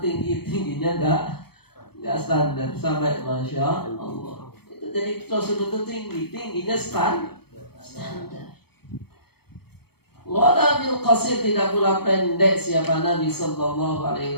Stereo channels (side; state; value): right; late; 0.96 ms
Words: enggak standar sampai masya Allah. Itu jadi Rasulullah itu tingginya standar. Wala bil qasir tidak pula pendek siapa Nabi sallallahu